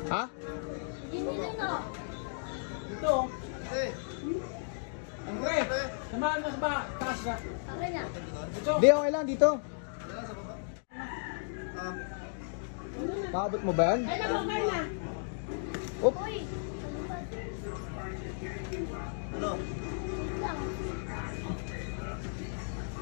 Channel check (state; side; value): silent; right; digital silence